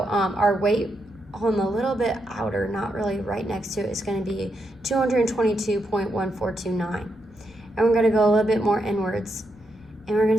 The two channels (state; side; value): noise; left; rumble, 25 dB below the sound